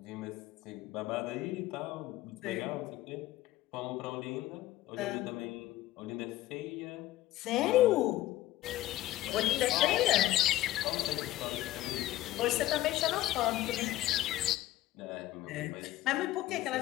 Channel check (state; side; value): quieter; right; 15.4 dB